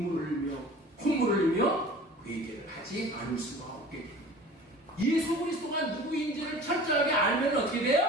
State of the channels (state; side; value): normal; both; correlation 0.42